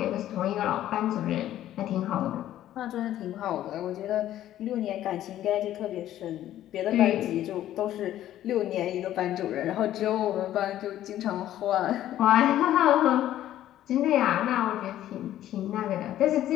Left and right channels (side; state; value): right; quieter; 12.7 dB